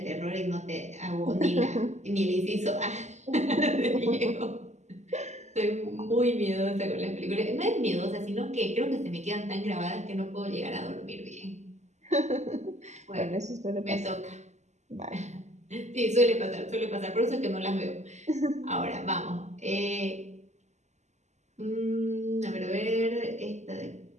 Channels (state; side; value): late; left; 0.33 ms